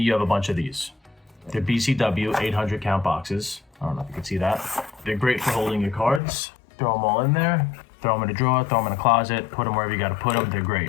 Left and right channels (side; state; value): right; drops out; at 6.2 s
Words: have a bunch of these. They're BCW 800 count boxes. I don't know if you can see that. They're great for holding your cards. Throw them all in there, throw them in a drawer, throw them in a closet, put them wherever you gotta put them. They're